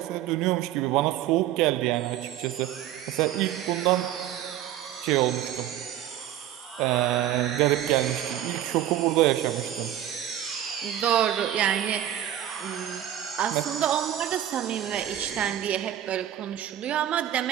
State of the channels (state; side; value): quieter; left; 11.9 dB